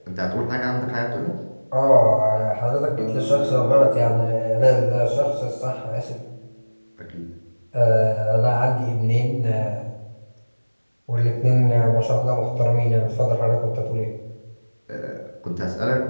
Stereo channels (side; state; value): both; inverted; correlation -1.00